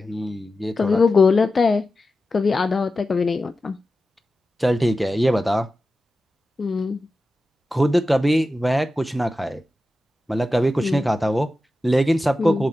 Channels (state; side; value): normal; both; correlation 0.93